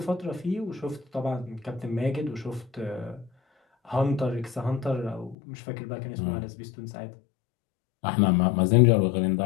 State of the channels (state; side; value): drops out; right; at 5.4 s